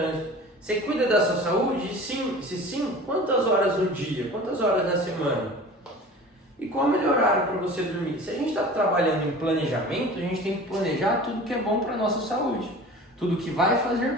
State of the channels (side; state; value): both; normal; correlation 0.40